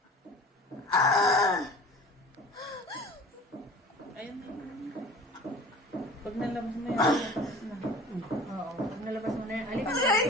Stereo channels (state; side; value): normal; both; correlation 0.42